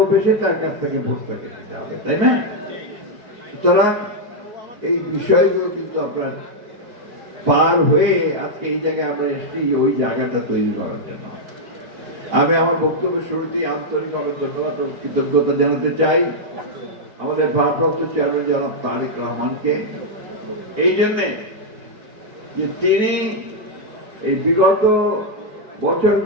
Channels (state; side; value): late; left; 4.6 ms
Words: তার কাছ থেকে ভোটটাকে দিতে হবে, তাই না? সুতরাং এই বিষয়গুলো কিন্তু আপনার পার হয়ে আজকে এই জায়গায় আমরা এসেছি, ওই জায়গাটা তৈরি করার জন্য। আমি আমার বক্তব্যের শুরুতেই আন্তরিকভাবে ধন্যবাদ ও কৃতজ্ঞতা জানাতে চাই আমাদের ভারপ্রাপ্ত চেয়ারম্যান জনাব তারেক রহমানকে, এই জন্যে যে তিনি এই বিগত